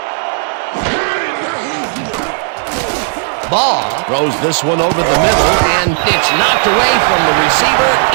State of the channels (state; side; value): silent; left; digital silence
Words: Ball throws this one over the middle, and it's knocked away from the receiver,